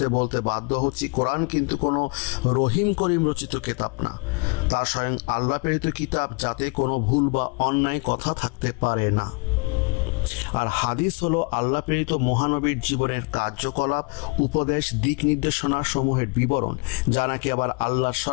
বলতে বাধ্য হচ্ছি, কোরআন কিন্তু কোনো রহিম করিম রচিত কিতাব না। তা স্বয়ং আল্লাহ প্রেরিত কিতাব, যাতে কোনো ভুল বা অন্যায় কথা থাকতে পারে না। আর হাদিস হলো আল্লাহ প্রেরিত মহানবীর জীবনের কার্যকলাপ, উপদেশ, দিক নির্দেশনা সমূহের বিবরণ, যা নাকি আবার আল্লাহর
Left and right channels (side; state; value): right; quieter; 32.0 dB